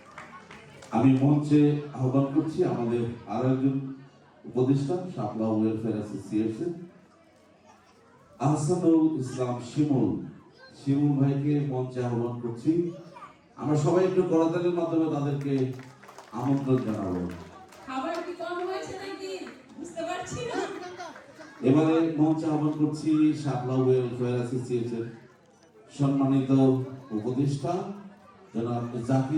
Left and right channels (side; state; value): both; identical; correlation 1.00